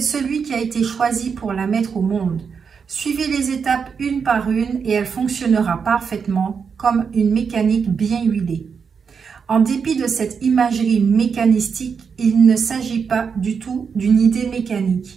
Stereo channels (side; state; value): left; quieter; 6.1 dB